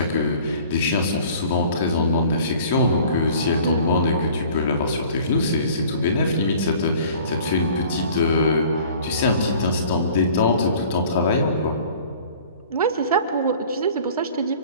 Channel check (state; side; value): inverted; both; correlation -0.49